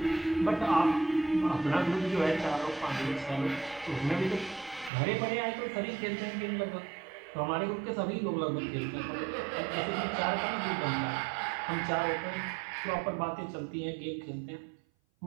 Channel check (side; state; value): left; drops out; at 4.9 s